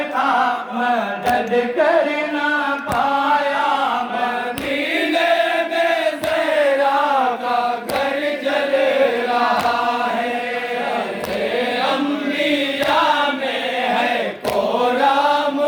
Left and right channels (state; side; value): identical; both; correlation 1.00